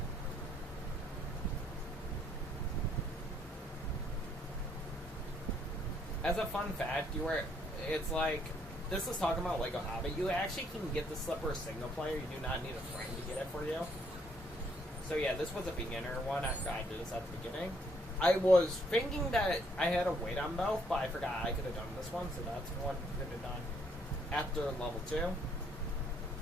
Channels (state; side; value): normal; both; correlation 0.68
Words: As a fun fact, it's like, this is talking about Lego Hobbit. You actually can get the slipper single player. You do not need a friend to get it for you. So yeah, this was a beginner one. I tried to do this at the beginning. I was thinking that I had to wait on both, but I forgot I could have done this one, so that's one I could have done after level 2.